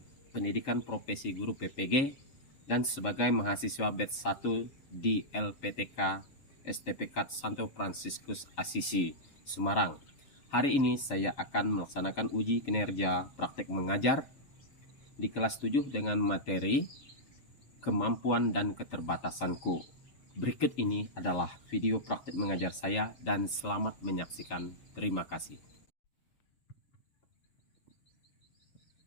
pendidikan profesi guru PPG dan sebagai mahasiswa batch 1 di LPTK STPK Santo Fransiskus Asisi, Semarang. Hari ini saya akan melaksanakan uji kinerja praktek mengajar di kelas 7 dengan materi kemampuan dan keterbatasanku. Berikut ini adalah video praktek mengajar saya dan selamat menyaksikan. Terima kasih.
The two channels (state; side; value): late; right; 7.2 ms